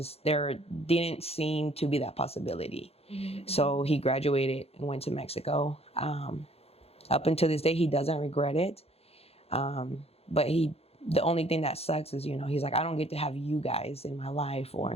there didn't seem to be that possibility. So he graduated and went to Mexico. Up until this day, he doesn't regret it. But the only thing that sucks is, he's like, I don't get to have you guys in my life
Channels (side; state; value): right; late; 0.29 ms